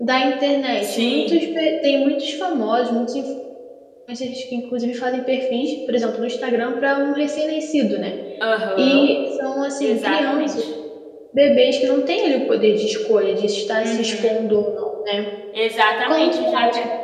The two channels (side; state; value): both; identical; correlation 1.00